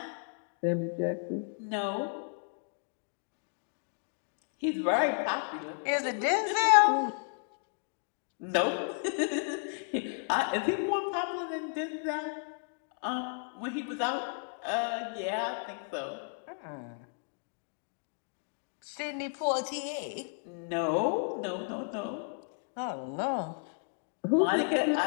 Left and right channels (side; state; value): right; silent; 56 dB below the other